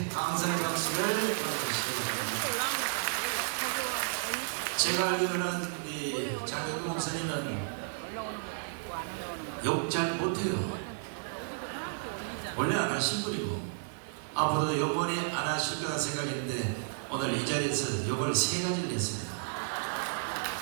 감사의 박수를 보내주시기 바랍니다. 제가 알기로는 우리 장경근 목사님은 욕 잘 못해요. 원래 안 하신 분이고 앞으로도 요번에 안 하실 거라 생각했는데 오늘 이 자리에서 욕을 3가지를 했습니다.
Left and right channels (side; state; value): left; silent; digital silence